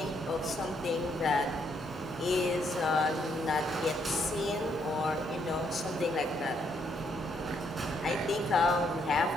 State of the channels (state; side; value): normal; both; correlation 0.73